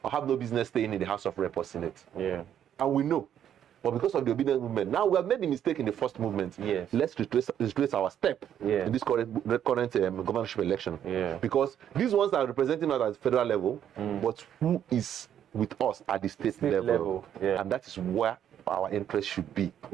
or have no business staying in the House of Rep or Senate. Yeah. And we know. But because of the obedience movement, now we have made the mistake in the first movement. Yes. Let's retrace our step in this current governorship election. Yeah. Because these ones are representing us at federal level, but who is with us at the state level? Yeah. And that is where our interest should be.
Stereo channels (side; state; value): left; quieter; 9.9 dB